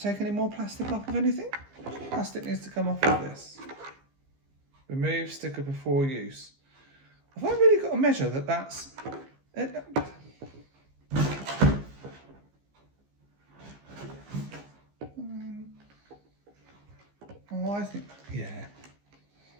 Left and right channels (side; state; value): left; late; 15 ms